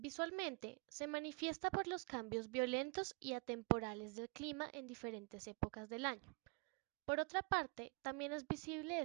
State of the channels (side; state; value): left; quieter; 31.6 dB